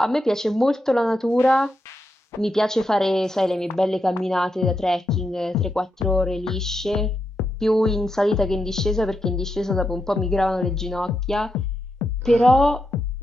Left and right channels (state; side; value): normal; both; correlation 0.85